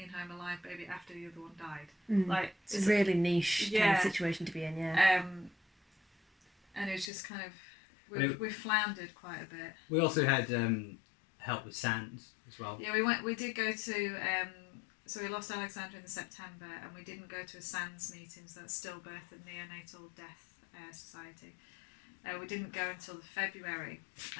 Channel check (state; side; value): drops out; right; at 7.1 s